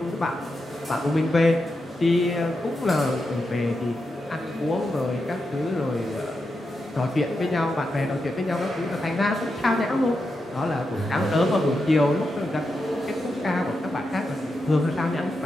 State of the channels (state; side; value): normal; both; correlation 0.87